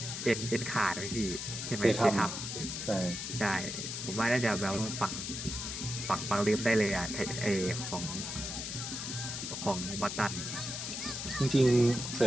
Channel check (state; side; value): noise; left; hiss, 5 dB below the sound